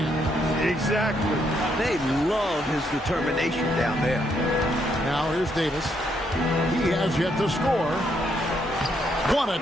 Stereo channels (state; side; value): normal; both; correlation 0.75